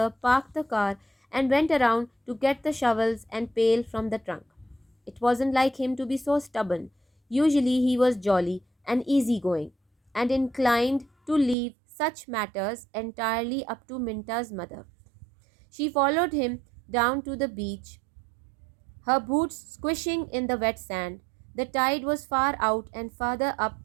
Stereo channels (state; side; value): drops out; left; at 11.6 s